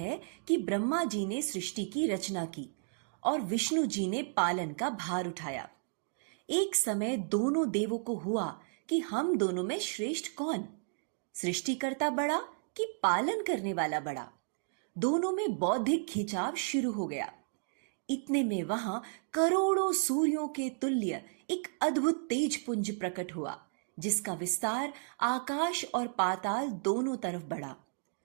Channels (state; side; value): silent; left; digital silence